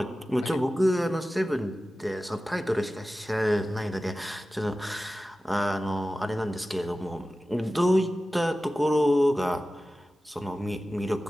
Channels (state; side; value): normal; both; correlation 0.95